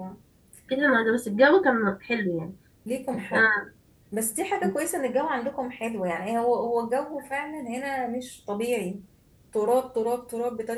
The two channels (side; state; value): both; identical; correlation 1.00